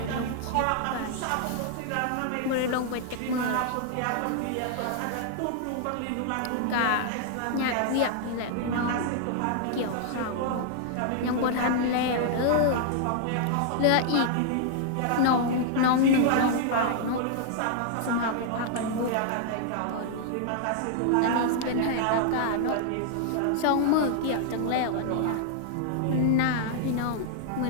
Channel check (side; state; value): both; different; correlation -0.01